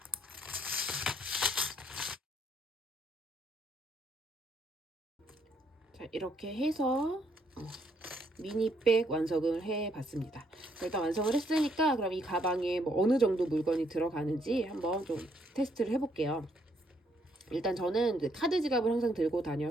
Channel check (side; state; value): both; normal; correlation 0.71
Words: 자, 이렇게 해서 미니백 완성을 해봤습니다. 일단 완성을 했으니까 그럼 이 가방에 뭐 어느 정도 물건이 들어가는지 한번 좀 테스트를 해볼게요. 일단 저는 이제 카드 지갑을 항상 들고